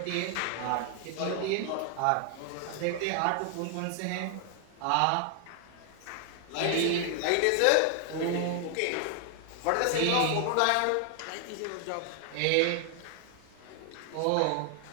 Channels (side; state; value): both; different; correlation 0.00